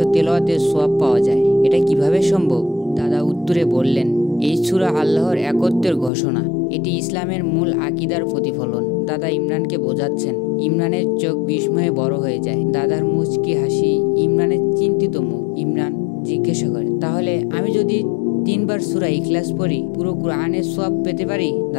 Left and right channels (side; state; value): right; drops out; at 6.1 s